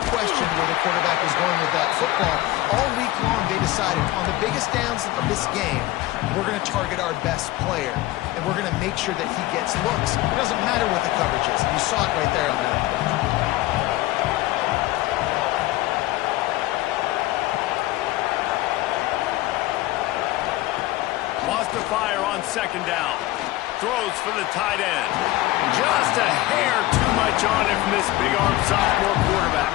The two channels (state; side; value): quieter; right; 17.3 dB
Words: question where the quarterback was going with that football. All week long, they decided on the biggest downs of this game, we're going to target our best player, and we're going to make sure that he gets looks. It doesn't matter what the coverage is. And you saw it right there on that play. Wants to fire on second down. Throws for the tight end. Just a hair too much on it from this big-arm sophomore quarterback.